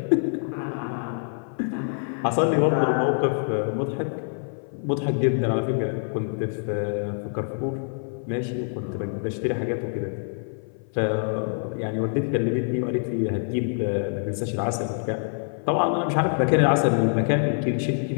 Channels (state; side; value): silent; right; 57 dB below the other